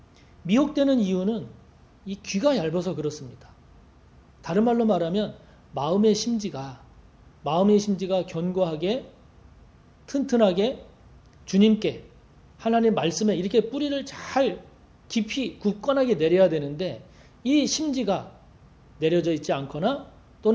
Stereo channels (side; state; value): both; identical; correlation 1.00